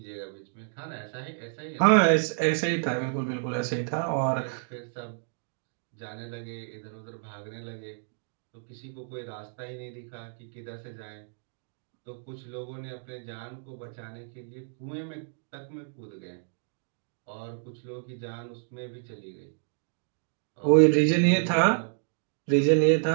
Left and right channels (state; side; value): silent; left; digital silence